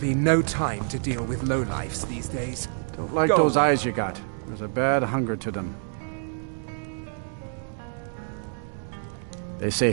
no time to deal with lowlifes these days. Don't like Go those on. eyes you got. There's a bad hunger to them. They say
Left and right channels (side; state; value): left; silent; 60 dB below the other